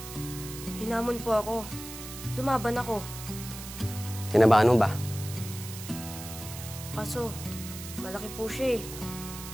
Hinamon po ako. Lumaban ako. Kinabahan mo ba? Kaso, malaki po siya eh.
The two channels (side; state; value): right; noise; hiss, 11 dB below the sound